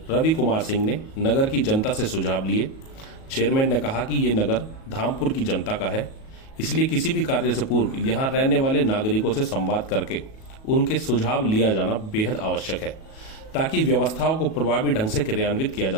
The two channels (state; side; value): late; right; 37 ms